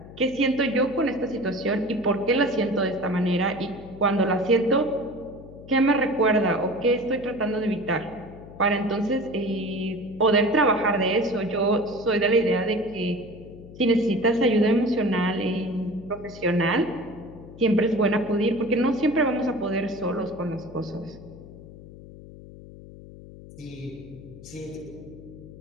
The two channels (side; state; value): left; noise; hum, 17 dB below the sound